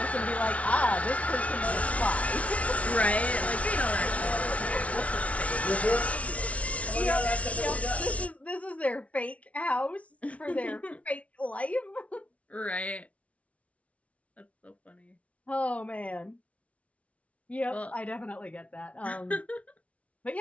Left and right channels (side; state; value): right; late; 0.065 ms